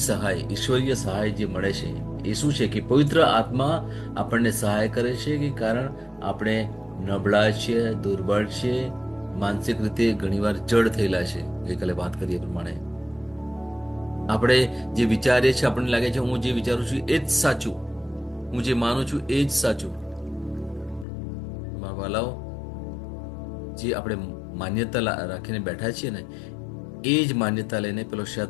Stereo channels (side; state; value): right; drops out; at 21.1 s